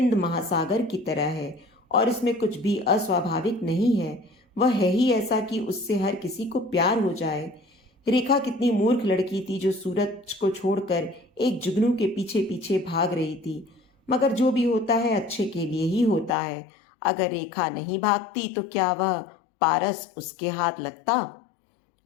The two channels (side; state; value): right; drops out; at 16.3 s